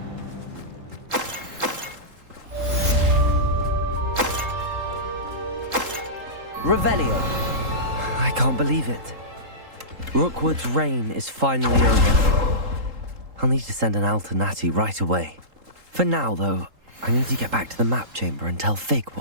Revelio. I can't believe it. Rookwood's reign is finally over. I'll need to send an Alternati right away. For now, though, I need to get back to the map chamber and tell Fig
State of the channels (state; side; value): late; left; 3.8 ms